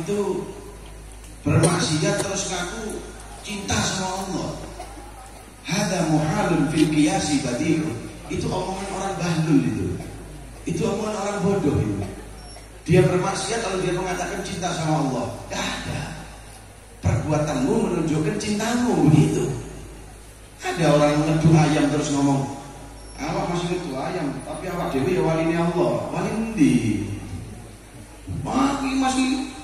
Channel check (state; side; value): identical; both; correlation 1.00